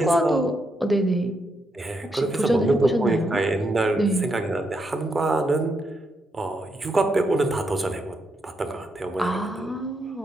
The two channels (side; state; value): both; normal; correlation 0.80